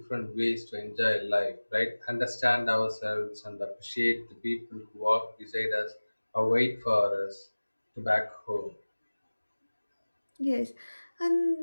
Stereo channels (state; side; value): inverted; both; correlation -1.00